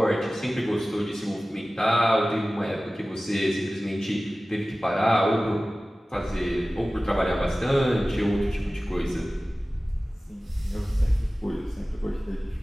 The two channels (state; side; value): normal; both; correlation 0.97